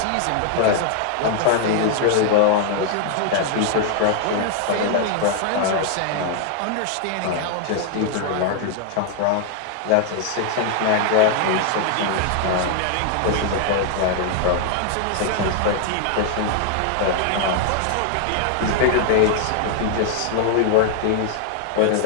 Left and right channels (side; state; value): both; different; correlation 0.00